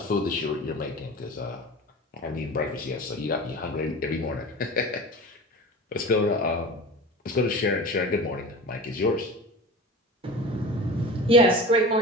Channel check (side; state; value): both; normal; correlation 0.34